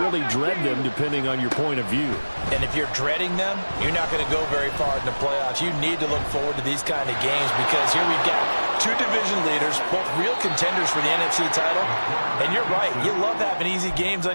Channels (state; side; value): inverted; both; correlation -1.00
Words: really dread them, depending on your point of view. And if you're dreading them, you're not going to go very far in the playoffs. You need to look forward to these kind of games because here we've got 2 division leaders, both real contenders for the NFC title. And you're right, you love having easy games